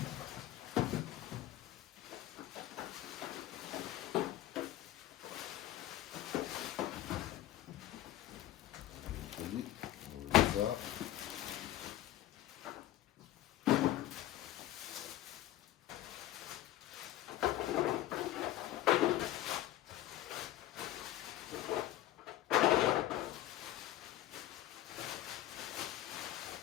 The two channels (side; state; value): right; quieter; 13.9 dB